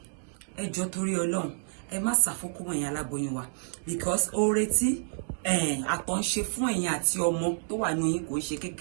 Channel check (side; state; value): left; silent; 59 dB below the other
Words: Ẹ jọ̀ọ́ torí Ọlọ́run ẹ má sá fún okó ẹ̀yin aláboyún wa because oore tí àtọ̀ ń ṣe fún ẹ̀yin àti ọmọ tó wà ní yín kò ṣe